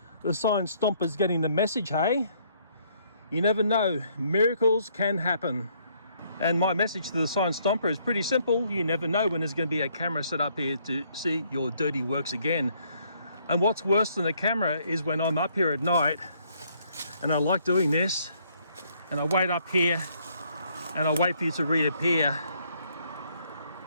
the sign Stompers getting the message, hey? You never know, miracles can happen. And my message to the sign Stomper is pretty simple. You never know when there's going to be a camera set up here to see your dirty works again. And what's worse than the camera is when I'm up here at night and I like doing this and I wait up here and I wait for you to reappear.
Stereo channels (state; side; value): inverted; both; correlation -0.67